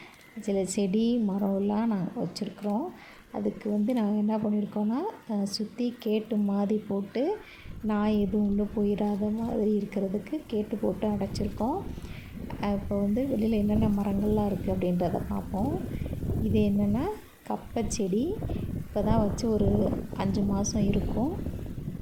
சில செடி மரம்லாம் நாங்கள் வச்சுருக்குறோம். அதுக்கு நாங்கள் என்ன பண்ணியிருக்கோன்னா, சுற்றி கேட்டு மாதிரி போட்டு நாய் எதுவும் உள்ளே போயிடாத மாதிரி இருக்கிறதுக்கு கேட்டு போட்டு அடைச்சிருக்கோம். இப்போ வெளியில் என்னென்ன மரங்கள்லாம் இருக்குது அப்படின்றத பார்ப்போம். இது என்னென்னா கப்பை செடி. இப்போ தான் வச்சு ஒரு 5 மாதம் இருக்கும்.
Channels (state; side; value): identical; both; correlation 1.00